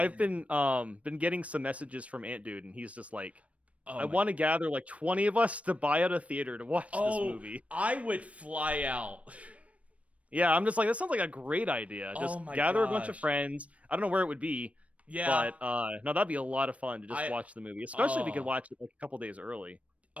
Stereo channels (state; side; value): late; left; 0.065 ms